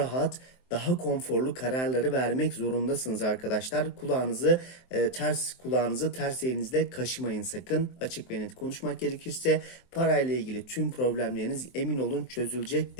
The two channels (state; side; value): late; right; 23 ms